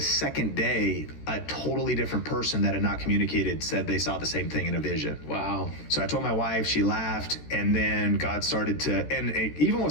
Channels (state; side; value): late; right; 13 ms